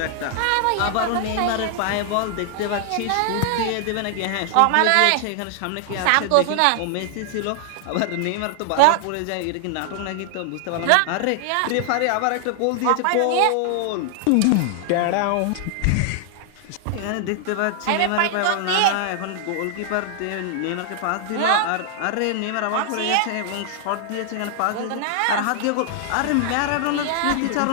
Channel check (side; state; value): both; different; correlation 0.00